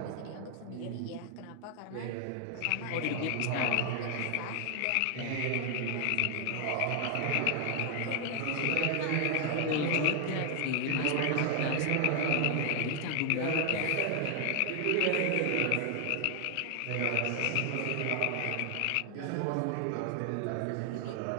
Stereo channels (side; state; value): both; different; correlation 0.00